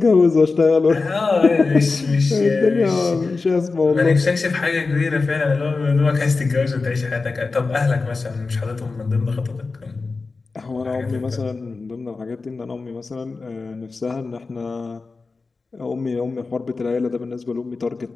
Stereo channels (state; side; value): quieter; right; 4.0 dB